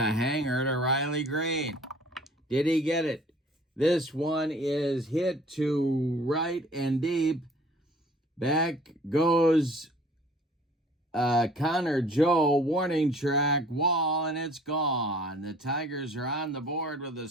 hanger to Riley Green. Did he get it? This one is hit to right and deep. Back goes Connor Joe, warning track, wall, and it's gone. The Tigers are on the board with a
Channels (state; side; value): normal; both; correlation 0.52